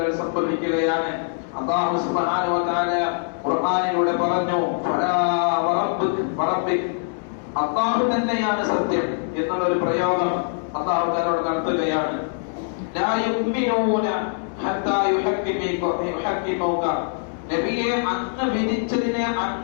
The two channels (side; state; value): right; silent; digital silence